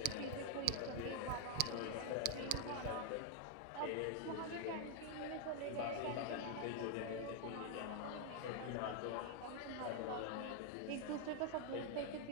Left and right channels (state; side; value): different; both; correlation 0.00